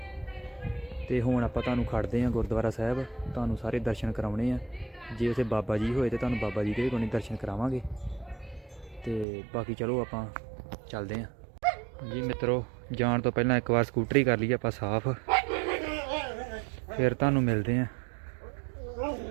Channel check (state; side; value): drops out; left; at 9.2 s